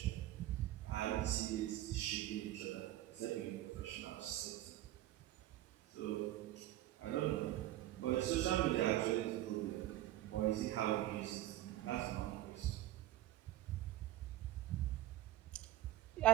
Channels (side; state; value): left; quieter; 14.6 dB